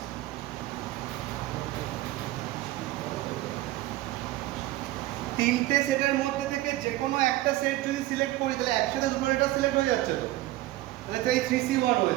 তিনটে সেটের মধ্যে থেকে যে কোনো একটা সেট যদি সিলেক্ট করি তাহলে একসাথে দুটো লেটার সিলেক্ট হয়ে যাচ্ছে তো। তাহলে তো এই 3C1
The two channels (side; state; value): left; quieter; 16.4 dB